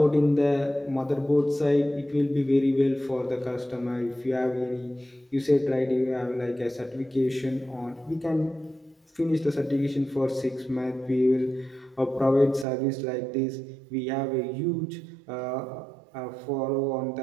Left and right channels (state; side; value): drops out; left; at 12.7 s